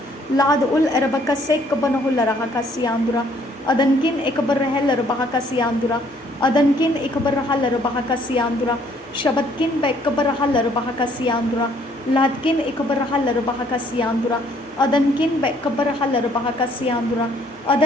Lad ul erebekasah kabanahular hakasi andra. Adankin ikabarahalar bahakasi andra. Adankin ikabarahalar bahakasi andra. Shabatkin bekabarahalar bahakasi andra. Ladkin ikabarahalar bahakasi andra. Adankin bekabarahalar bahakasi andra.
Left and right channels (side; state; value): both; normal; correlation 0.63